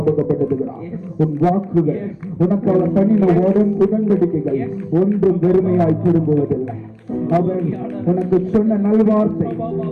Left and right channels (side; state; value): both; identical; correlation 1.00